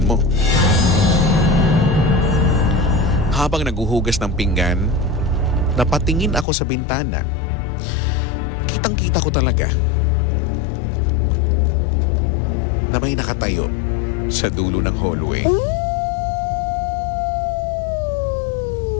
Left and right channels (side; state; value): right; drops out; at 6.5 s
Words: mo. Habang naguhugas ng pinggan, napatingin ako sa bintana. Kitang-kita ko talaga na may nakatayo sa dulo ng hallway.